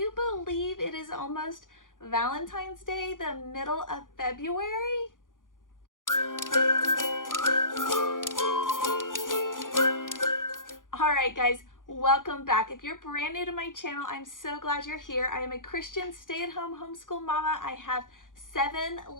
believe it is almost Valentine's Day, the middle of February? Alright guys, welcome back. If you're brand new to my channel, I'm so glad you're here. I am a Christian stay-at-home homeschool mama. I have 7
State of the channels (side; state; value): right; late; 0.89 ms